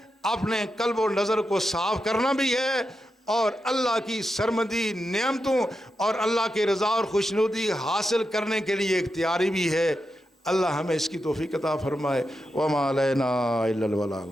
اپنے قلب و نظر کو صاف کرنا بھی ہے، اور اللہ کی سرمدی نعمتوں اور اللہ کی رضا اور خوشنودی حاصل کرنے کے لیے اختیاری بھی ہے. اللہ ہمیں اس کی توفیق عطا فرمائے. وما علینا الا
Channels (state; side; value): normal; both; correlation 0.87